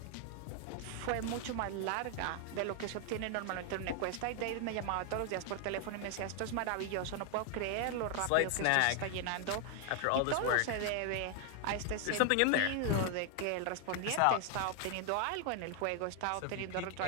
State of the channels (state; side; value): different; both; correlation 0.00